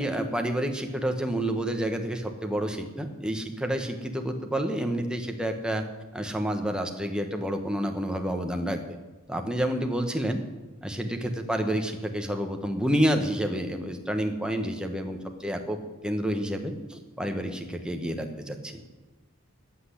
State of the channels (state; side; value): normal; both; correlation 0.80